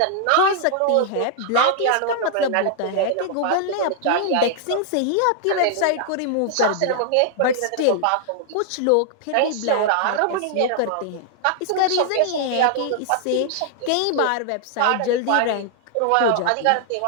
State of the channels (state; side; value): different; both; correlation -0.01